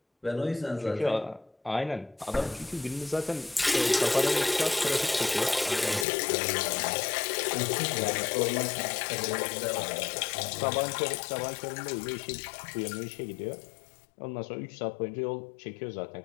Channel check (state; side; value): drops out; right; at 6.1 s